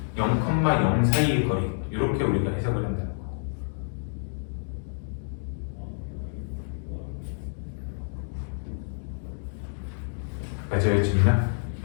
0,0 사이의 거리 이렇게 우리가 해석을 한다는 거야. 맞아요, 지민아?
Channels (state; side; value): silent; right; digital silence